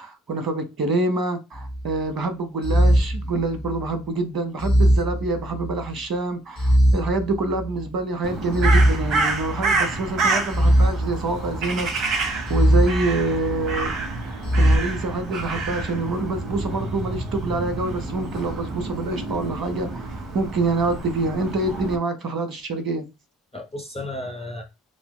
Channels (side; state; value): both; normal; correlation 0.65